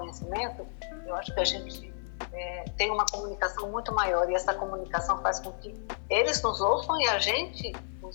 eu acho que a gente tem uma comunicação muito maior, e essa comunicação faz com que eles nos ouçam e a gente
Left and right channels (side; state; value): right; silent; 57 dB below the other